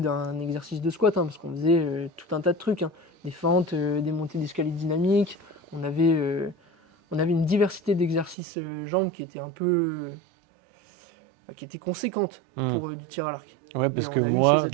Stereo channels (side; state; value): left; drops out; at 8.3 s